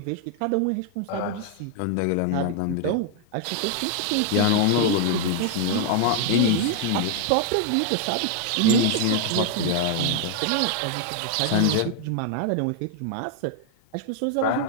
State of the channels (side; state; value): both; different; correlation 0.00